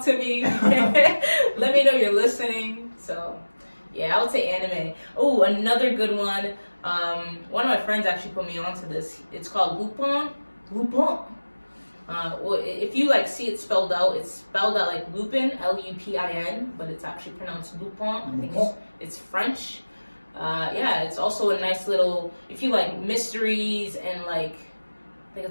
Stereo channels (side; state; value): both; inverted; correlation -1.00